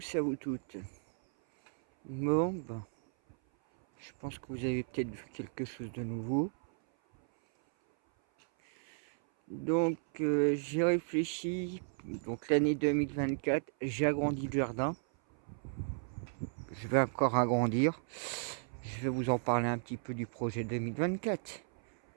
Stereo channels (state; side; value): silent; left; 55 dB below the other